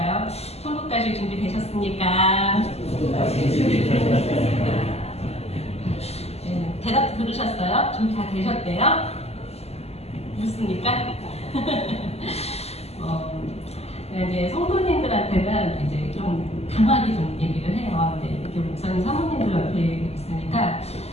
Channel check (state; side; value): late; right; 0.30 ms